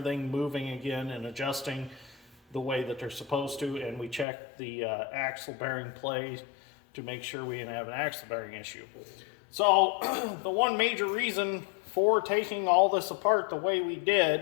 moving again and adjusting the way that they're supposed to. And we checked the axle bearing play to make sure we didn't have an axle bearing issue. So the one major reason for taking all this apart the way we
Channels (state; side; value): drops out; right; at 4.2 s